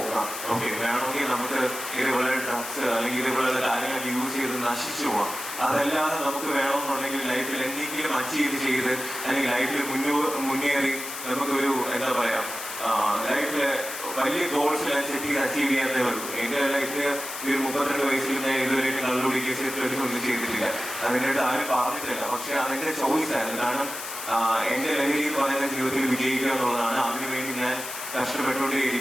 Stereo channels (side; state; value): left; noise; hiss, 8 dB below the sound